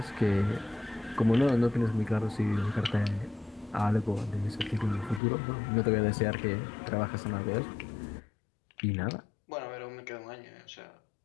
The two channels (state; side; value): drops out; right; at 5.2 s